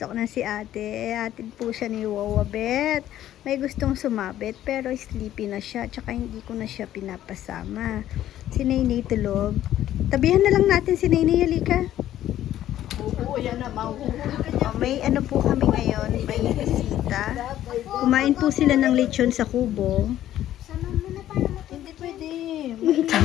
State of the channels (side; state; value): right; quieter; 12.5 dB